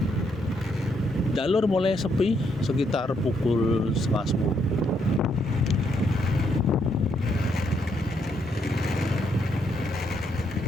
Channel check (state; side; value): normal; both; correlation 0.75